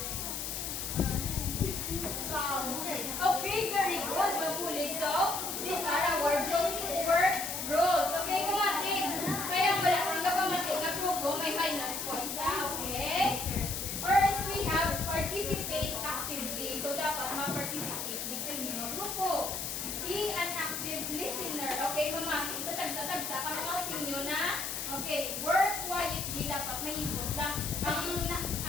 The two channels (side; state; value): left; noise; hiss, 4 dB below the sound